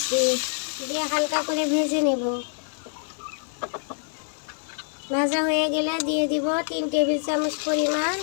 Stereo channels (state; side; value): silent; right; 61 dB below the other